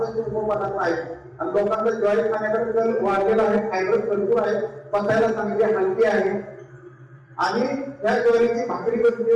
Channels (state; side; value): identical; both; correlation 1.00